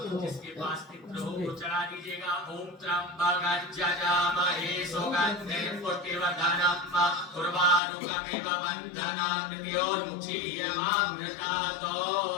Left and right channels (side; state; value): right; drops out; at 7.8 s